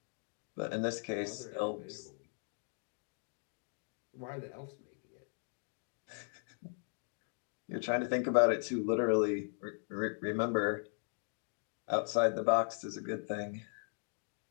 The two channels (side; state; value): right; silent; 52 dB below the other